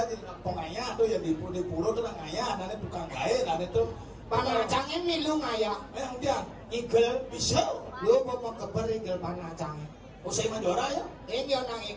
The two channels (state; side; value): identical; both; correlation 1.00